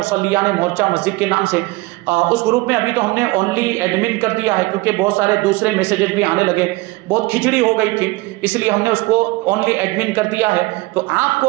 مورچہ مسجد کے نام سے. اس گروپ میں ابھی تو ہم نے اونلی ایڈمن کر دیا ہے، کیونکہ بہت سارے دوسرے میسیجز بھی آنے لگے، بہت کھچڑی ہو گئی تھی، اس لیے ہم نے اس کو اونلی ایڈمن کر دیا ہے. تو آپ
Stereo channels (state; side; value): quieter; left; 21.8 dB